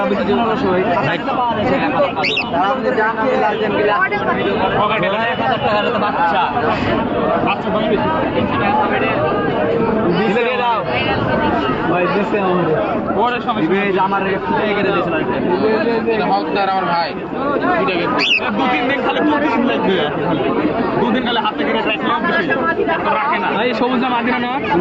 বেশি জন হলো সবাই তারা আমাদের জানা লালজেন গিলা 1000 টাকা তো বাচ্চা বাচ্চা দাম বেশি দিলে দাও ভাই দিছে আমাদের ওরে সমস্যা দিবে আমার ফুটে গেলে দিছিল এটা হকদার আমার ভাই ফুটে গেছে 2-3 দিন খালি প্রতিদিন লাগবে খালি 2 দিন খালি হাতে করে রাখলাম বেশি তো রাখে না ভাই সবুজ না মাদিনা না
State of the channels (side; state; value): both; identical; correlation 1.00